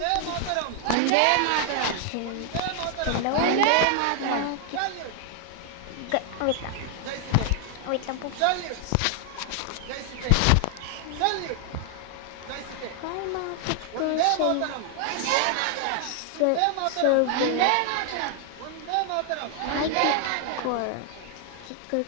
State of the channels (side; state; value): both; different; correlation 0.00